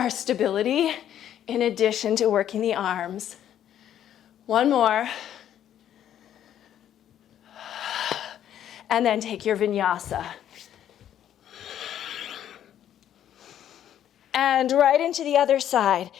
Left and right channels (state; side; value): quieter; right; 10.7 dB